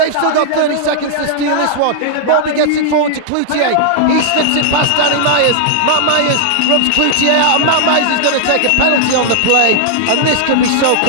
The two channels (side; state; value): both; different; correlation -0.01